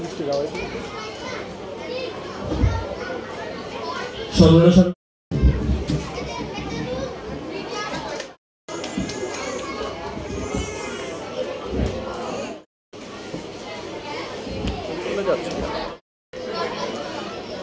মিষ্টি খাওয়াই সর্বনাশ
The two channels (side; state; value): both; identical; correlation 1.00